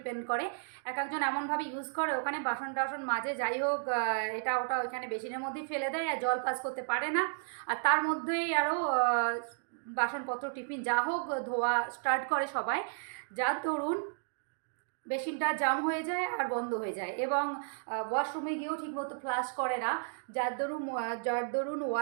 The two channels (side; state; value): left; silent; digital silence